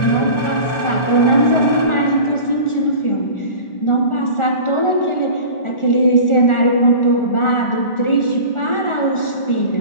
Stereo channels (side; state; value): right; late; 1.4 ms